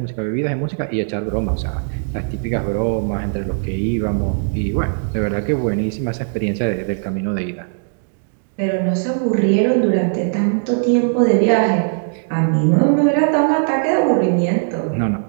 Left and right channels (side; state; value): left; silent; digital silence